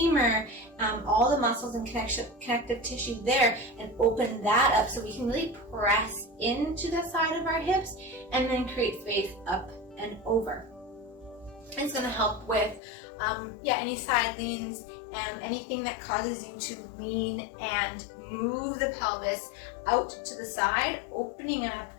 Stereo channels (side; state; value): right; drops out; at 12.8 s